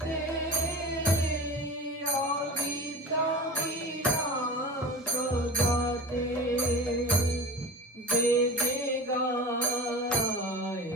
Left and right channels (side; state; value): both; normal; correlation 0.34